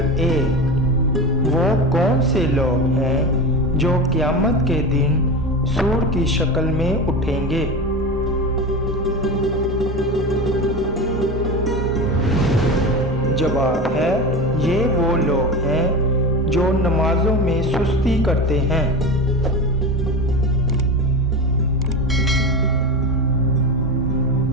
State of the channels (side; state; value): both; normal; correlation 0.25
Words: 1، وہ کون سے لوگ ہیں جو قیامت کے دن سور کی شکل میں اٹھیں گے؟ جواب ہے یہ وہ لوگ ہیں جو نمازوں میں سستی کرتے ہیں۔